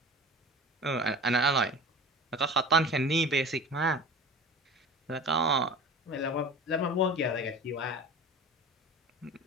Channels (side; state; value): both; normal; correlation 0.38